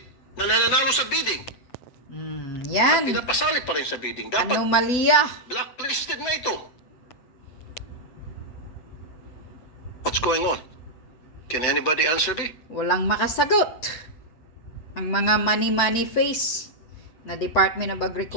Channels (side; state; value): right; late; 8.0 ms